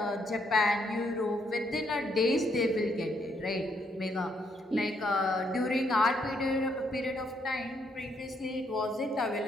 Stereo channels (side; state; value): both; normal; correlation 0.73